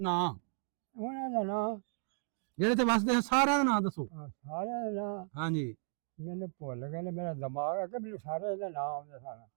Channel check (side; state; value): left; silent; 55 dB below the other